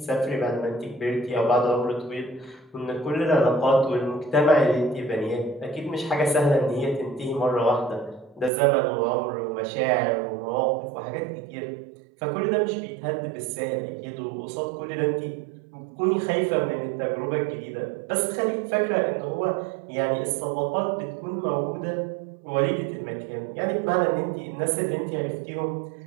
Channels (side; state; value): left; drops out; at 8.5 s